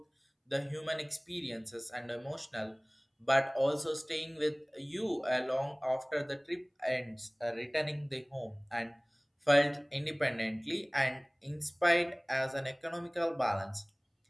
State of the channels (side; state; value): both; identical; correlation 1.00